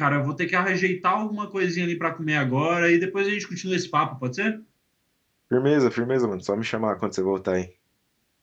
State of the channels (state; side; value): identical; both; correlation 1.00